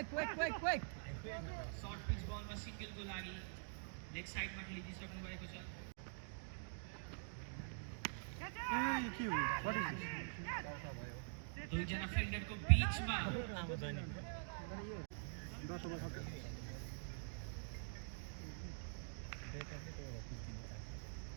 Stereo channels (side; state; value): left; silent; digital silence